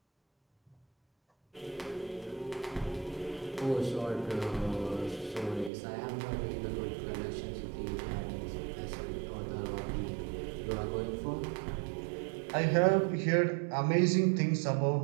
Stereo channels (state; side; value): drops out; left; at 5.7 s